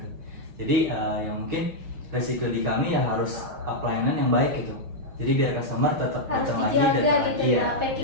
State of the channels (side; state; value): left; late; 6.1 ms